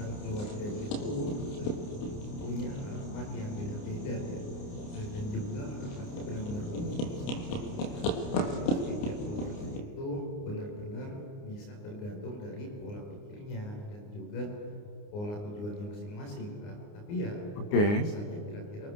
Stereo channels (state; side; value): late; right; 29 ms